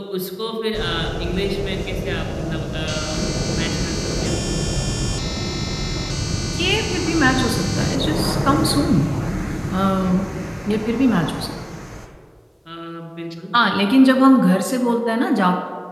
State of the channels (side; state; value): both; identical; correlation 1.00